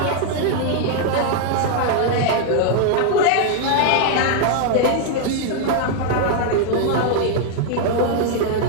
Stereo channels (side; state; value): both; different; correlation 0.00